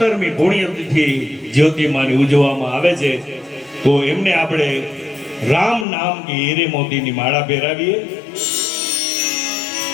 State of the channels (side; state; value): right; drops out; at 5.9 s